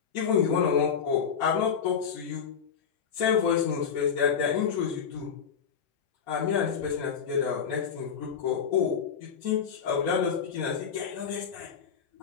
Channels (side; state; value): right; quieter; 7.1 dB